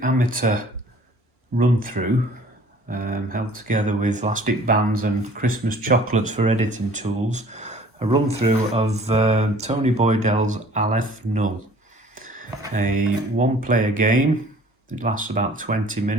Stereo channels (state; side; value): normal; both; correlation 0.52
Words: amateur run-through held together with elastic bands and Christmas chocolates for editing tools. A run-through of Tony Boydell's Aleph Null, a one-player game. It lasts about 20